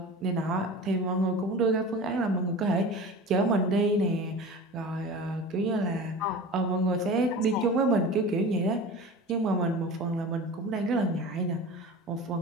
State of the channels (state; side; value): normal; both; correlation 0.34